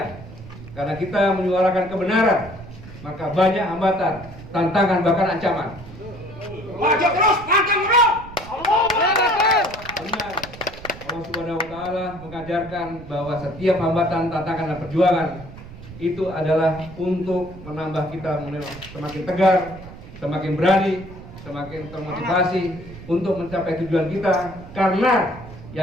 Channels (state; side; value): noise; right; rumble, 15 dB below the sound